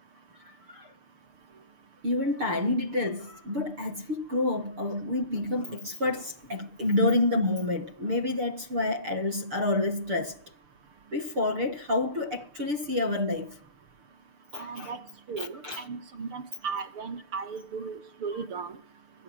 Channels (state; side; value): late; left; 6.8 ms